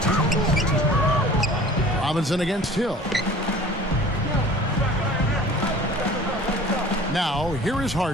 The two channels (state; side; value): normal; both; correlation 0.45